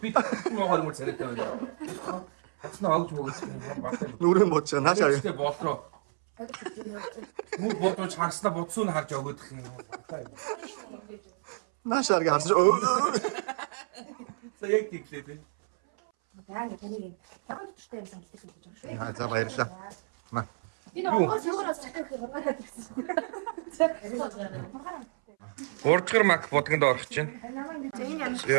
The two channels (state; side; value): silent; left; 58 dB below the other